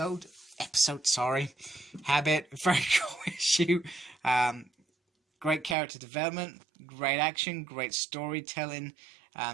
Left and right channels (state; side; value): drops out; left; at 5.8 s